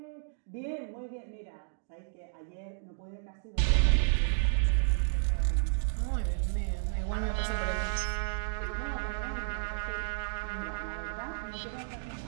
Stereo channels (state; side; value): silent; left; digital silence